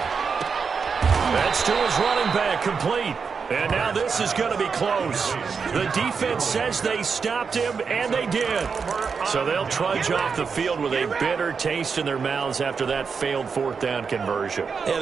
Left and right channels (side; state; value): left; quieter; 5.6 dB